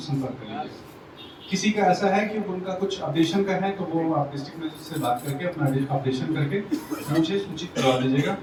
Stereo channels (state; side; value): identical; both; correlation 1.00